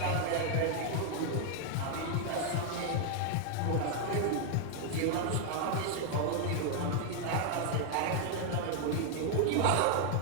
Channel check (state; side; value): different; both; correlation 0.00